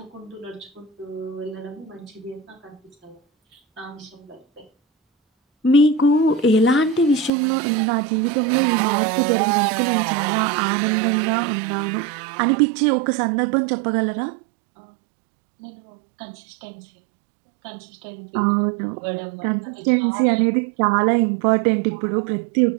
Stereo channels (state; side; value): drops out; left; at 7.3 s